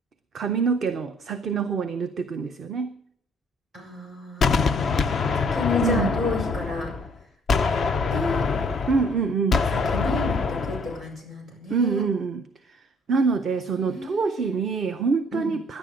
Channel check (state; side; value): normal; both; correlation 0.60